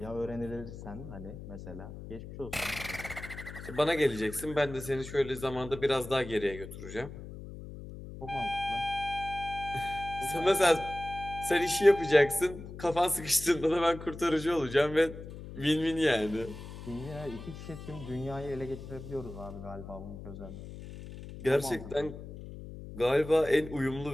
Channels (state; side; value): noise; left; hum, 12 dB below the sound